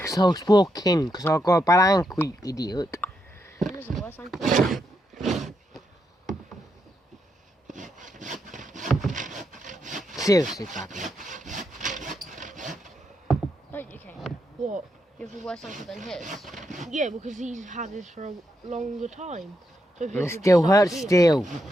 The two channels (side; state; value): both; normal; correlation 0.82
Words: I was walking, because I got a bad ankle, you idiot. It is the worst thing. Seriously, badly. Don't you, Kane? What? You have a worse ankle than his? Yeah, because he's had this for a longer time. So And it still hurts still.